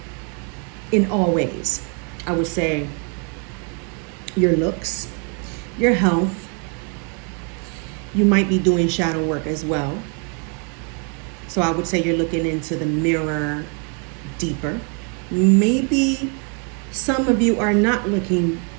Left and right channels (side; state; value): left; quieter; 38.1 dB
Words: In all ways. I would say your looks, your health. You might be doing shadow work as well. So I would say you're looking into the mirror deeper. Maybe some of you are not looking